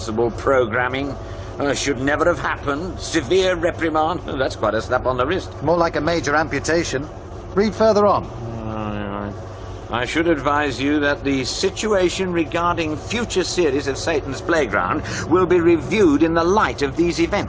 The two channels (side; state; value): both; identical; correlation 1.00